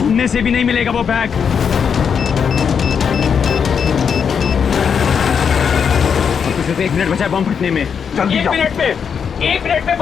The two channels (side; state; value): right; quieter; 6.9 dB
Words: से भी नहीं मिलेगा वो बैग। सिर्फ 1 मिनट बचा है बम फटने में। जल्दी जाओ। 1 मिनट में